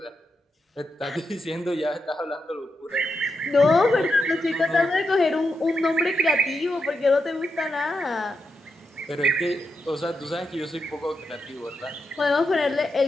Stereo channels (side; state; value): both; normal; correlation 0.85